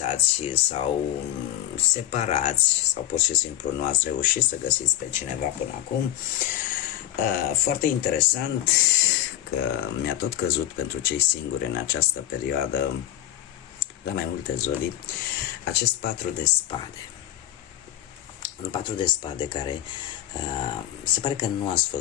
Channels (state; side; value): quieter; right; 13.2 dB